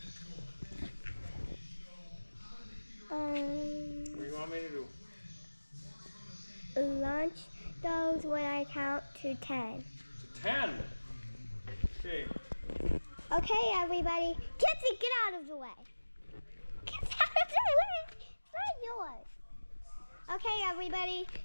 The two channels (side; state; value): both; inverted; correlation -1.00